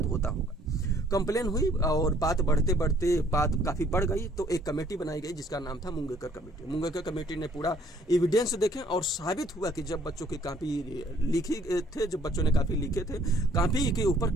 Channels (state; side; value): normal; both; correlation 0.61